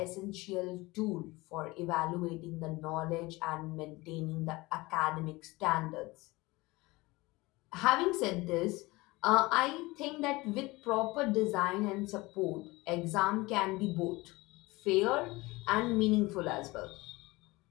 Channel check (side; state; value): right; quieter; 21.9 dB